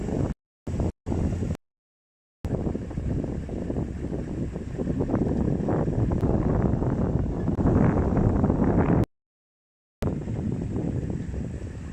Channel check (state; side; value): identical; both; correlation 1.00